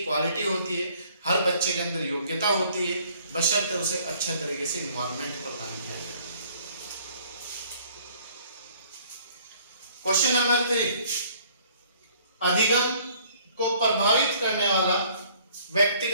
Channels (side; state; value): both; inverted; correlation -0.58